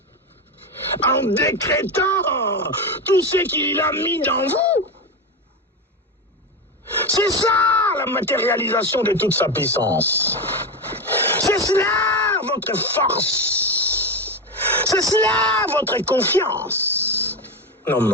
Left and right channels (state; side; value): normal; both; correlation 0.16